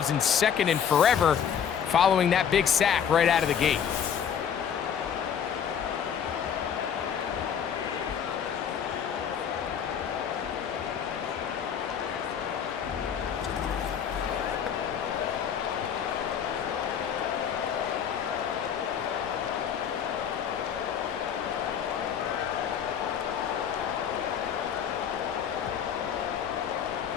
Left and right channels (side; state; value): right; quieter; 8.2 dB